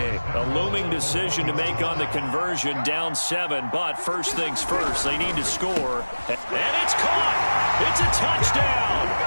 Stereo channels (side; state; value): both; inverted; correlation -1.00